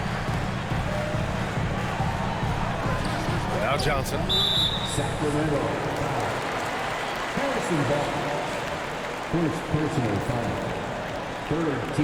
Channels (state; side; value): identical; both; correlation 1.00